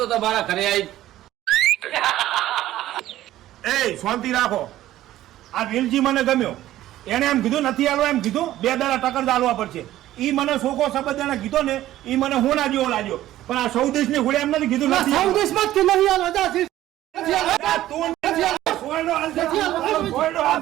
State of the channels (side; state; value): left; quieter; 14.1 dB